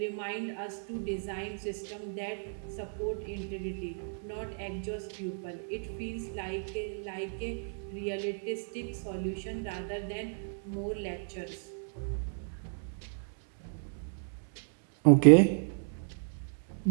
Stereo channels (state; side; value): silent; left; digital silence